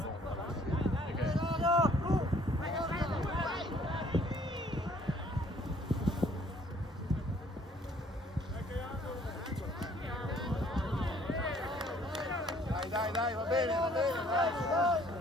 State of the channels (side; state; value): both; normal; correlation 0.60